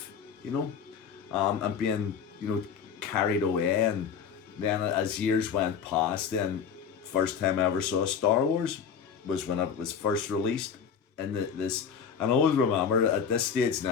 and being, carried away. And then as years went past, then first time I ever saw Star Wars was when it was first released. And this, and I always remember at this stage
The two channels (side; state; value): right; quieter; 7.1 dB